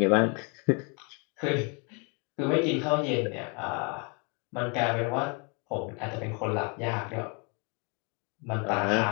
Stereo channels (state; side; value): quieter; right; 34.0 dB